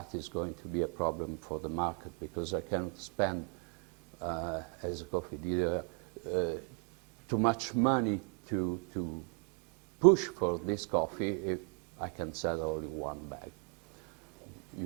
is going to be a problem for the market because I cannot spend, as a coffee dealer, too much money to push for this coffee if I can sell only 1 bag.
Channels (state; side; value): quieter; left; 37.4 dB